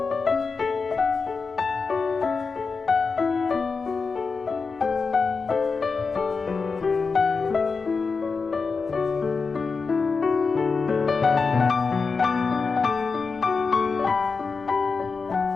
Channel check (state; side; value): quieter; right; 4.7 dB